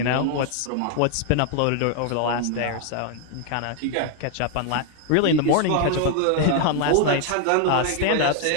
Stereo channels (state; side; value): different; both; correlation 0.00